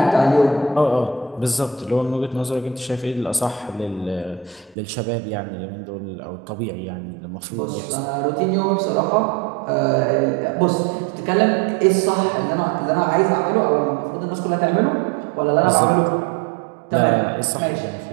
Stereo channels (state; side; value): drops out; left; at 4.8 s